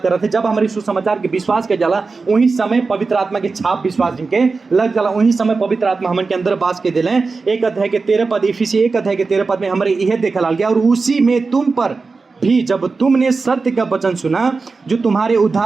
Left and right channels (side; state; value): left; quieter; 4.2 dB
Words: कर रहे थे, जब हमारे सुसमाचार के विश्वास के जाला, वही समय पवित्र आत्मा के छाप विश्वास जिनके लग जाला, वही समय पवित्र आत्मा हमारे के अंदर बास के दिले। 1 अध्याय के 13 पद, इफिसी 1 अध्याय के 13 पद में हमारे यह देखा गया, और उसी में तुम पर भी जब तुमने सत्य का वचन सुना, जो तुम्हारे